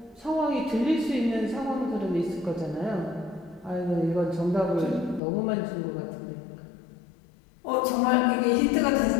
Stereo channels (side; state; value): right; drops out; at 5.2 s